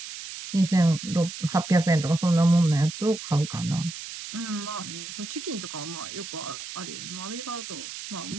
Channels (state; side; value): noise; right; hiss, 10 dB below the sound